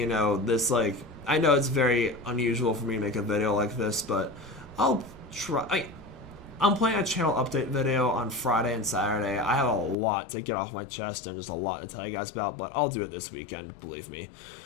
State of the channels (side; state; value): right; drops out; at 10.0 s